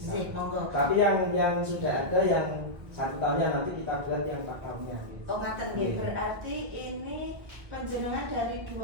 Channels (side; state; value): left; late; 1.8 ms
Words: Monggo. Tapi yang sudah ada yang 1 tahunnya nanti kita buat yang 4 tahunnya. Oh ngaten nggih, berarti ini penjenengan dari